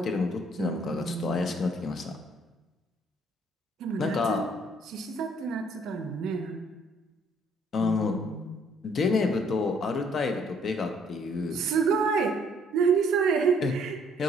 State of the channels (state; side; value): normal; both; correlation 0.63